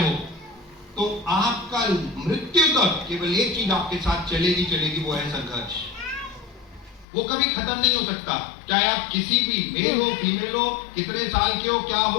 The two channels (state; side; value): drops out; right; at 7.1 s